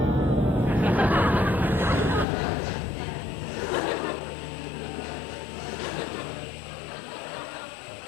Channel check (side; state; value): right; drops out; at 2.2 s